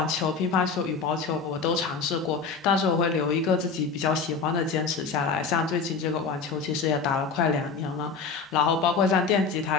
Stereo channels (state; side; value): quieter; right; 5.1 dB